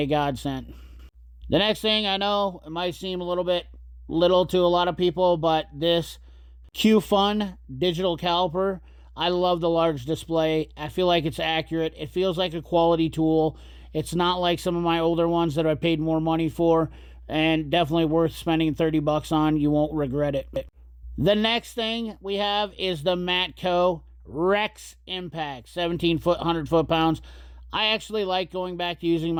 godsend. The next thing, I know it might seem a little bit little to a lot of people, but this Q-Fun digital caliper, I love the large display. I feel like it's accurate. It feels like a quality tool. It's not like some of my older ones that I paid more money for, and definitely worth spending 30 bucks on. You won't regret it. The next thing we have is the Matco Rex Impact, 17 foot, 100 foot-pounds. I actually like going back to using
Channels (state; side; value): identical; both; correlation 1.00